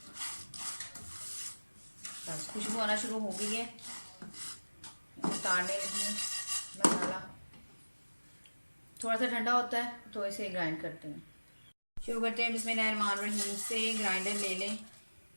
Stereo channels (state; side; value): inverted; both; correlation -1.00